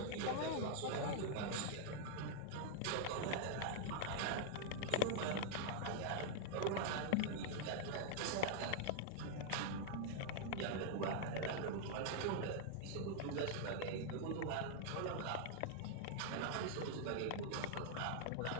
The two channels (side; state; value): both; different; correlation -0.01